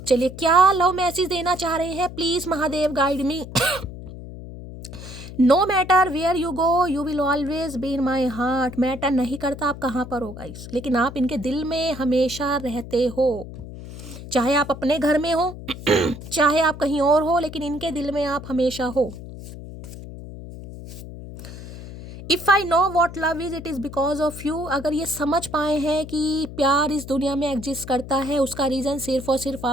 चलिए, क्या लव मैसेज देना चाह रहे हैं, please Mahadev guide me. No matter where you go you will always be in my heart. Matter नहीं करता आप कहाँ पर हो गाइस, लेकिन आप इनके दिल में हमेशा रहते हो। चाहे आप अपने घर में हो चाहे आप कहीं और हो, लेकिन इनके दिल में आप हमेशा हो। If I know what love is it is because of you. अगर ये समझ पाए हैं कि प्यार इस दुनिया में एग्जिस्ट करता है, उसका रीज़न सिर्फ और सिर्फ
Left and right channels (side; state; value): left; noise; hum, 12 dB below the sound